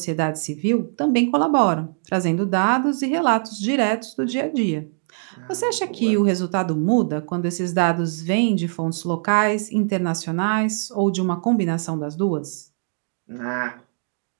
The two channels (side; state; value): left; silent; 60 dB below the other